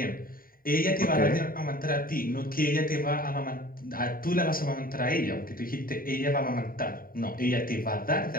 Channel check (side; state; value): right; late; 0.42 ms